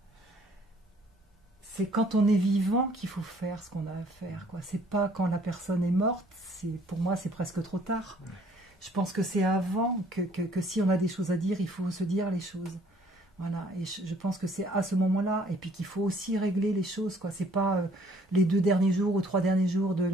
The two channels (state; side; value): normal; both; correlation 0.60